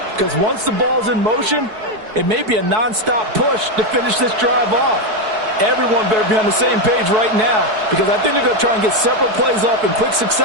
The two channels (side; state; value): left; late; 4.6 ms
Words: Because once the ball's in motion, it may be a nonstop push to finish this drive off. Everyone better be on the same page right now, because I think they're going to try and get several plays off in quick